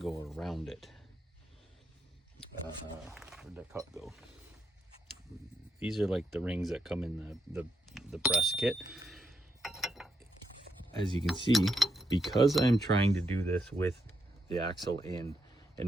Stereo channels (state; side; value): normal; both; correlation 0.79